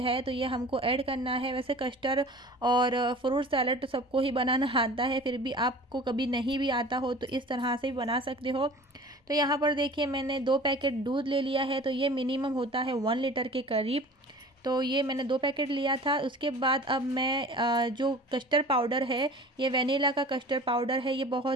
तो ये हमको ऐड करना है। वैसे कस्टर्ड और फ्रूट सैलेड तो सबको ही बनाना आता है, फिर भी आपको कभी नहीं भी आता हो तो इस तरह से भी बना सकते हो। तो यहाँ पर देखिए मैंने 2 पैकेट दूध ले लिया है, तो ये मिनिमम होता है 1 लीटर के करीब। तो ये मैंने 2 पैकेट लिया था। उसके बाद अब मैं जो कस्टर्ड पाउडर है, ये वेनिला का कस्टर्ड पाउडर है, ये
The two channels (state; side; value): normal; both; correlation 0.41